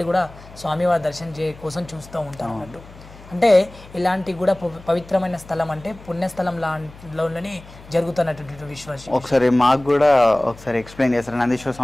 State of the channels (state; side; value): noise; left; hum, 20 dB below the sound